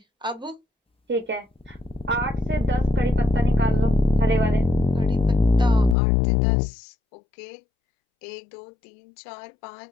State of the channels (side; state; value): right; drops out; at 6.0 s